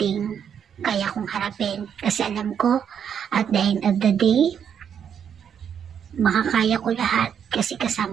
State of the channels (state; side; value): quieter; left; 8.1 dB